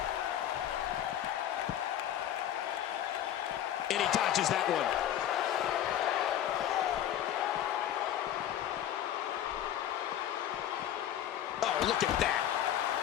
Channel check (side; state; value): right; quieter; 11.1 dB